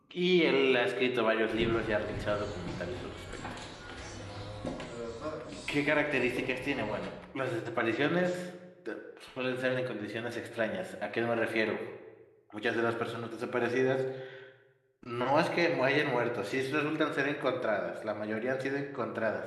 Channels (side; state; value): both; identical; correlation 1.00